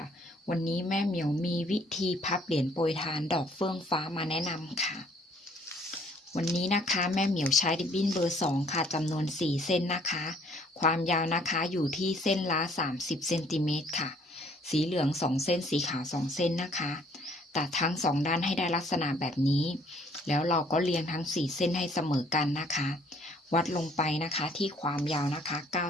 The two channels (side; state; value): both; normal; correlation 0.61